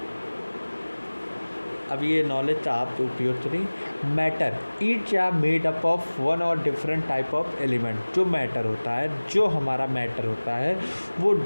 अब ये नॉलेज का आप उपयोग करें। Matter each are made up of one और डिफरेंट टाइप ऑफ एलिमेंट। जो मैटर होता है, जो हमारा मैटर होता है, वो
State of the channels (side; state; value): both; inverted; correlation -1.00